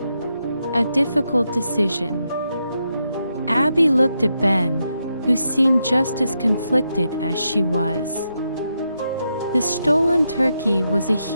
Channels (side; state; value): both; inverted; correlation -0.83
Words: A difficult decision. Abby looked at Ben, who seemed just as conflicted as she was. The stolen turkey was a